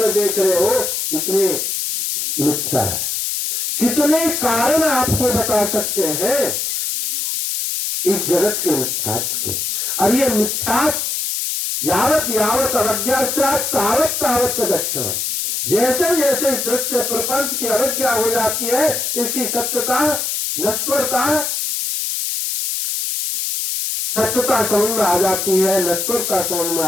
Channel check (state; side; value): noise; left; hiss, 1 dB below the sound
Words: देख रहे हो, इसलिए मिथ्या है। कितने कारण आपको बता सकते हैं इस जगत के मिथ्यात्व के, और ये मिथ्यात्व यावत यावत अवज्ञा से तावत तावत दक्षिण, जैसे जैसे इस दृश्य प्रपंच की अवज्ञा हो जाती है, इसकी सत्यता नश्वरता समझ में आ जाती है, नश्वरता समझ में